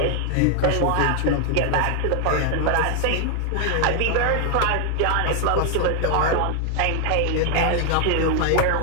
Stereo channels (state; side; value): different; both; correlation 0.00